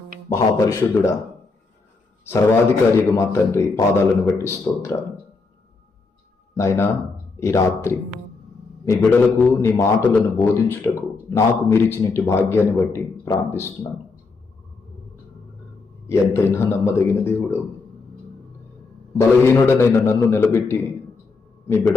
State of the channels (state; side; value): quieter; right; 4.2 dB